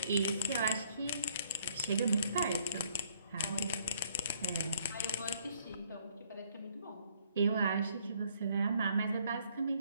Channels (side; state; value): both; inverted; correlation -0.64